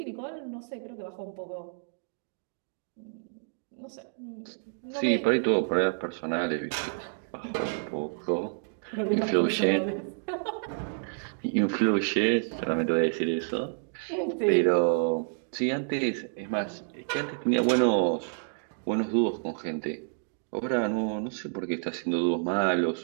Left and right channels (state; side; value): silent; left; digital silence